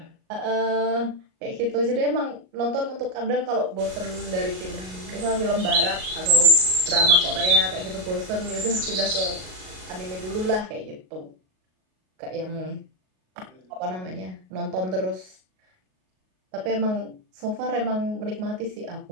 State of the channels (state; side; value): late; left; 38 ms